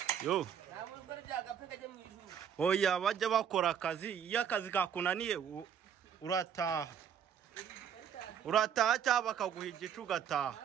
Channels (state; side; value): quieter; left; 8.4 dB